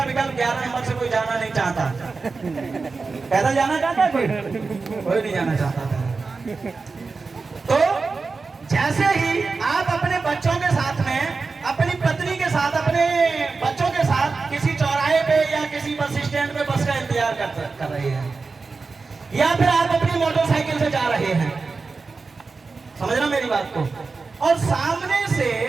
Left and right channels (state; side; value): quieter; left; 4.3 dB